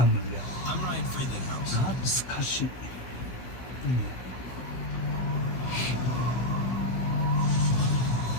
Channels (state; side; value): late; right; 16 ms